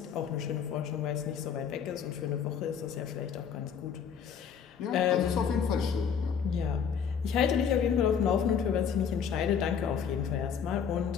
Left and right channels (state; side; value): quieter; right; 7.4 dB